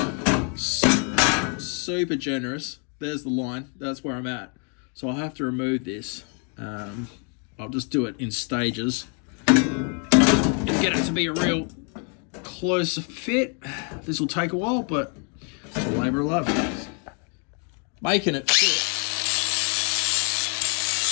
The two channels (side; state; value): right; quieter; 39.1 dB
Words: generous. There's the line, that's where I'm at. So I'll have to remove this. I'll just do it in stages and get it to be a real close fit. This will take a while, but it's a labour of love. Making it fit.